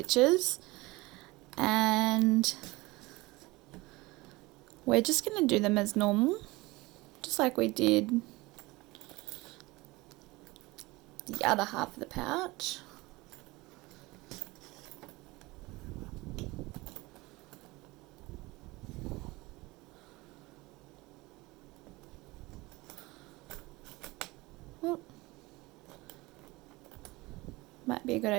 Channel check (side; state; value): left; quieter; 22.0 dB